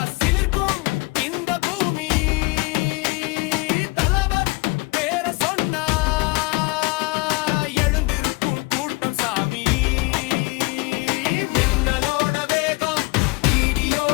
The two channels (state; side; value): quieter; right; 25.7 dB